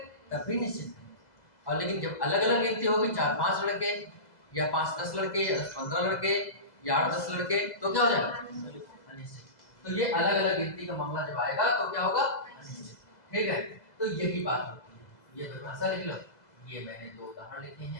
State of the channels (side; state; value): right; late; 2.0 ms